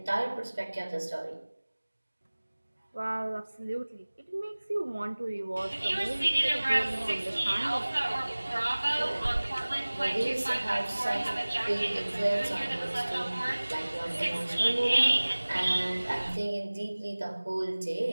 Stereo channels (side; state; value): both; inverted; correlation -1.00